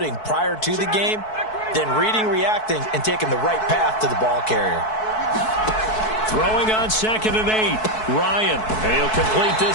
prior to the game, then reading, reacting, and taking the right path to the ball carrier. Throwing on 2nd and 8, Ryan. And he'll complete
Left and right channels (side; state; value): right; late; 4.6 ms